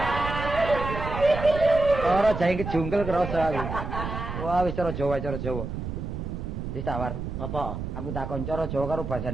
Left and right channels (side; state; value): right; noise; rumble, 6 dB below the sound